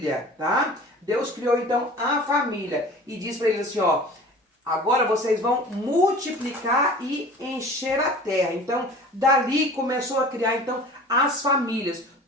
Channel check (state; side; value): normal; both; correlation 0.42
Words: tá? Deus criou então a família e diz para eles assim, ó, agora vocês vão multiplicar e encher a terra. Então, dali começou a criar então as famílias.